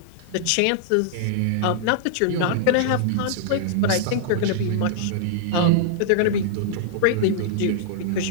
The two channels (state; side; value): different; both; correlation -0.01